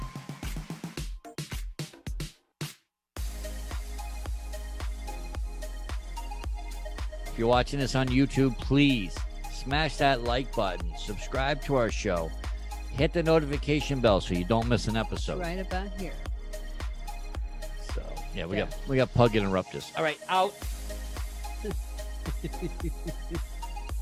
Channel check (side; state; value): both; identical; correlation 1.00